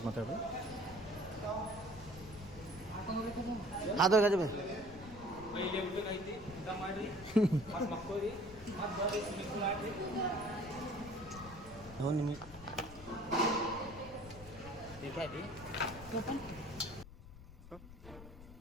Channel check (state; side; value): noise; left; rumble, 16 dB below the sound